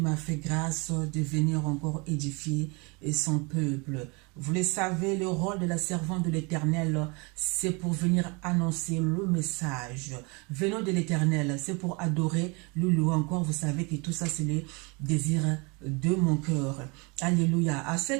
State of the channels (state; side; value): quieter; left; 29.4 dB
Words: fait grâce de venir encore édifier son peuple. Vous le savez, le rôle de la servante de l'Éternel, c'est pour venir annoncer le message. Venons de l'Éternel, c'est pour adorer, le louer encore. Vous savez que tout ça, c'est le désir de mon cœur. Alléluia. À